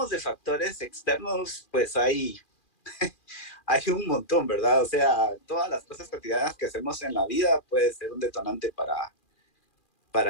de factores externos, pues hay un montón, ¿verdad? O sea, todas las cosas cotidianas que hacemos en la vida puede ser un detonante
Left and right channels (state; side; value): late; right; 2.4 ms